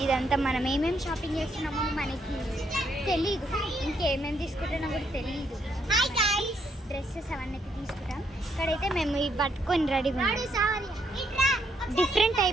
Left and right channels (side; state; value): both; normal; correlation 0.74